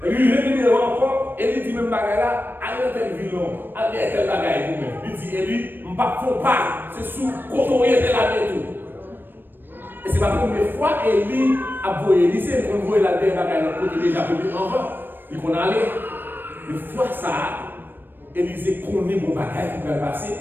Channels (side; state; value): left; late; 0.095 ms